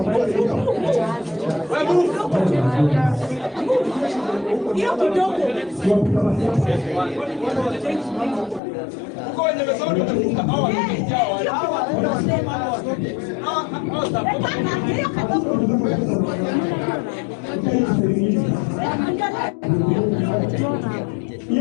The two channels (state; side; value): drops out; right; at 8.6 s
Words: Hiyo kidogo. Uko wenye mesoni tunafunga hawa wao.